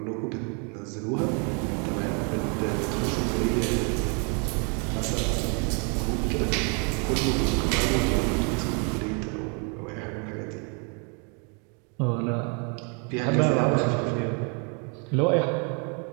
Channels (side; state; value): left; quieter; 36.4 dB